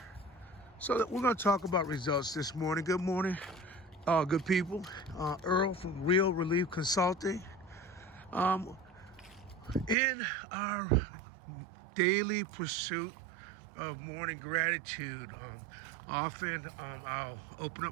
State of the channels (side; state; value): left; drops out; at 10.0 s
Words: So we're going to talk about results this morning. Good morning, good people. Earl from Real Relief Consulting. In our daily pursuit of morning gratitude, often I'll open